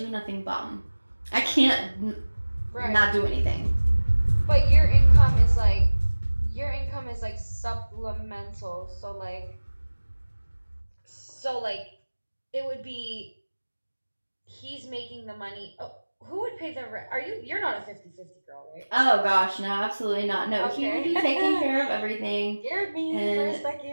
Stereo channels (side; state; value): both; inverted; correlation -1.00